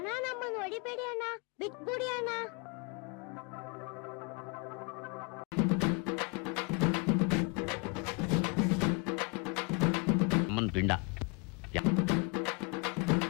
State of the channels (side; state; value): right; quieter; 31.7 dB